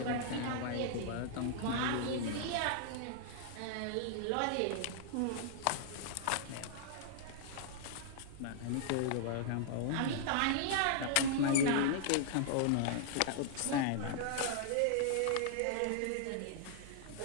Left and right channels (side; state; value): both; different; correlation -0.01